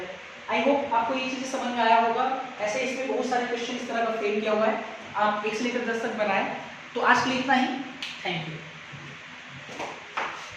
आई होप आपको ये चीजें समझ में आया होगा। ऐसे इसमें बहुत सारे क्वेश्चन इस तरह का फ्रेम किया हुआ है, आप 1 से लेकर 10 तक बनाएं। तो आज के लिए इतना ही, थैंक यू।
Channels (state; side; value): identical; both; correlation 1.00